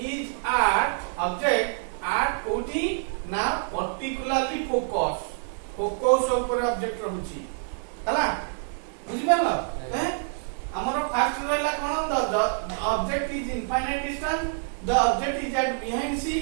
कोठी ना पर्टिकुलरली फोकस ऊपर ऑब्जेक्ट रहउची हला बुझि पालो हैं हमर फर्स्ट रहला कोन the object is infinite distance the object is at behind C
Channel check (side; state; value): left; silent; digital silence